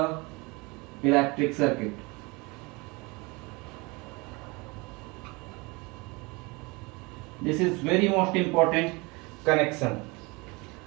electric circuit. This is very most important connection.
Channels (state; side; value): quieter; left; 26.5 dB